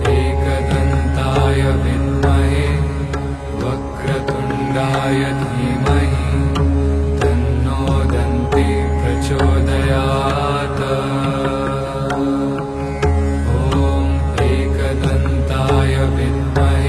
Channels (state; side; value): identical; both; correlation 1.00